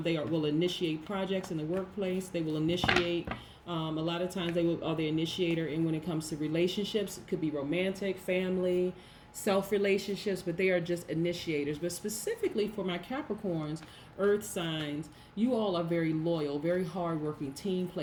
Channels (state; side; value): identical; both; correlation 1.00